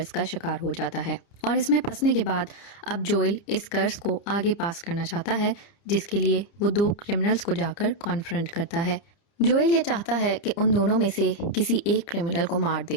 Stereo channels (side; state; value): right; late; 30 ms